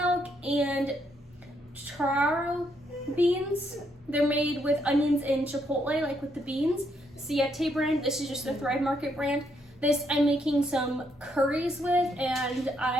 and taro beans. They're made with onions and chipotle, like with the beans. Siete brand. This is just the Thrive Market brand. This I'm making some curries with, and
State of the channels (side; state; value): both; normal; correlation 0.75